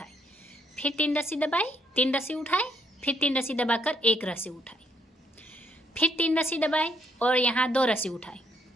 फिर 3 रस्सी दबाई, 3 रस्सी उठाई, फिर 3 रस्सी दबाकर 1 रस्सी उठाई। फिर 3 रस्सी दबाई और यहाँ 2 रस्सी उठाई।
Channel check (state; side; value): normal; both; correlation 0.70